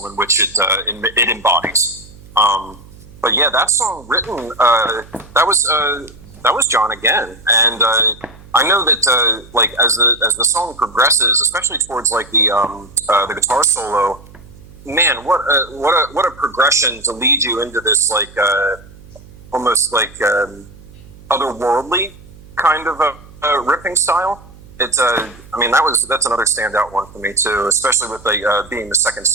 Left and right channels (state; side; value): noise; right; hum, 21 dB below the sound